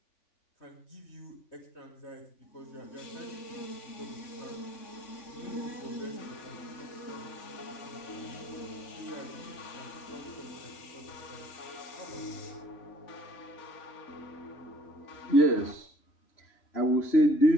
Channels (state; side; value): late; right; 3.5 ms